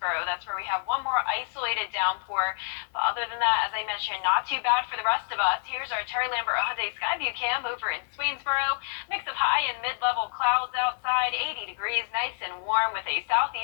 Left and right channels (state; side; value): silent; right; digital silence